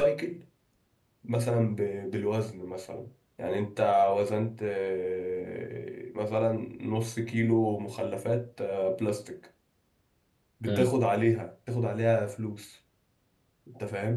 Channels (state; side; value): identical; both; correlation 1.00